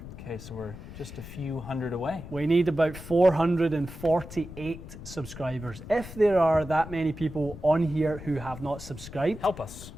Okay, so we're just a few hundred away. We need about 448 subscribers. If there are that many people on here who have not subscribed, help us.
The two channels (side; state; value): left; noise; rumble, 13 dB below the sound